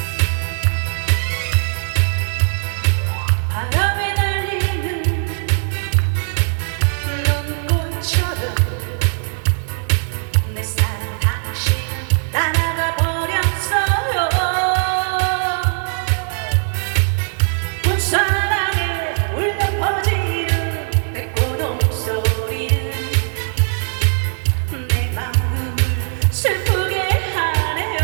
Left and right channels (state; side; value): silent; left; 62 dB below the other